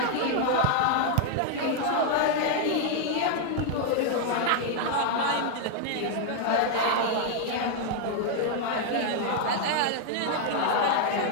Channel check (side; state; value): both; different; correlation 0.00